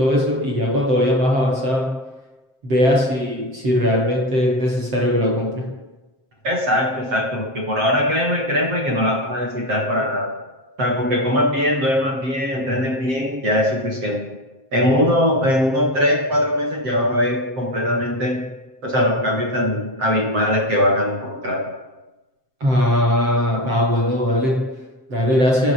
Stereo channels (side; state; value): left; late; 7.6 ms